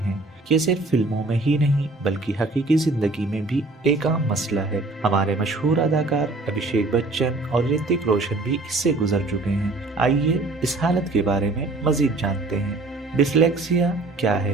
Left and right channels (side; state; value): left; quieter; 3.2 dB